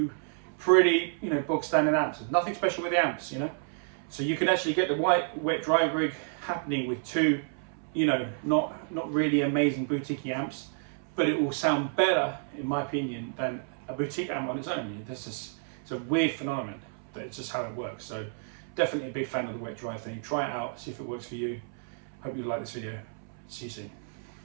pretty, you know, bog standard amps. There's nothing special with the amps, you know. So you can actually get the wet dry rig happening with two, you know, not really amazing boutique amps, but it will sound better, in my opinion, than a boutique amp on its own. It's a weird phenomenon, but it's just how it works. So definitely a big fan of the wet dry thing. Try it out, see if it works for you. Hope you like this video. See you soon.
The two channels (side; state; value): left; silent; 58 dB below the other